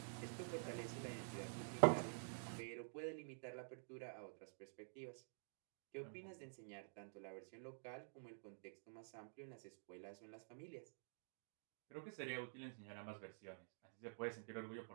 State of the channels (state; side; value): silent; left; digital silence